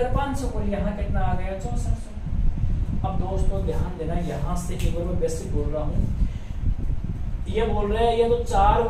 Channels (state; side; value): identical; both; correlation 1.00